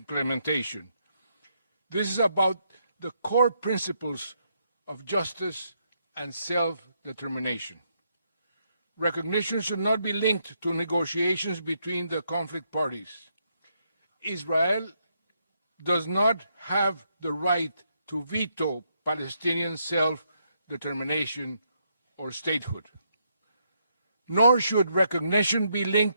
This is about the core principles of justice and self-determination. Recognition should not be linked to negotiations between the conflict parties. Israel does not have the right to veto Palestinian self-determination or statehood. Nor should recognition be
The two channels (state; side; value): inverted; both; correlation -0.77